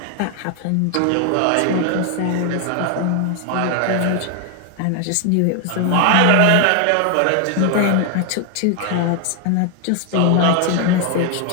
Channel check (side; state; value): both; different; correlation 0.00